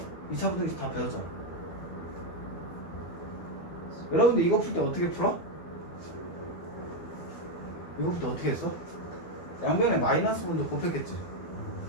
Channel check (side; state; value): right; late; 12 ms